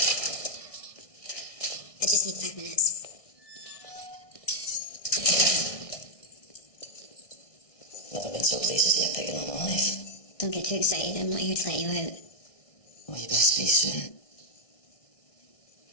I just need 5 minutes. Never been so pleased to see a pig in my life. Don't get too excited. I'm not here to let you out. Well, you best be soon.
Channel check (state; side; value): late; right; 1.6 ms